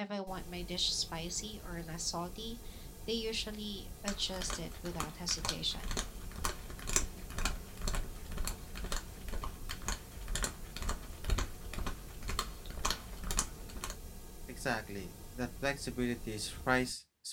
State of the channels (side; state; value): both; identical; correlation 1.00